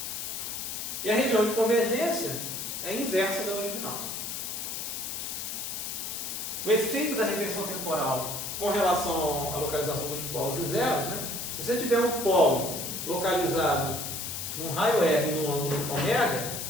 E a região de convergência é a inversa da original. O efeito da reversão temporal com relação à localização dos polos e zeros, né? Se você tiver um polo localizado num raio R num ângulo ômega,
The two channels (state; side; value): noise; left; hiss, 5 dB below the sound